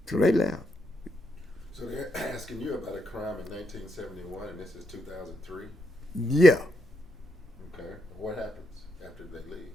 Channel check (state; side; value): normal; both; correlation 0.80